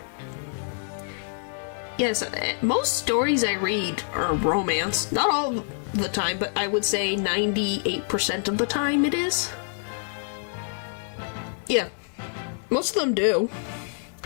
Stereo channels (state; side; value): silent; right; digital silence